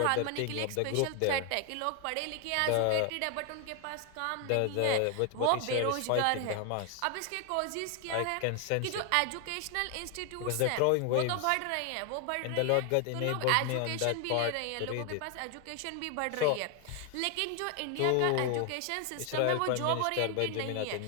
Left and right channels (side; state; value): both; different; correlation 0.01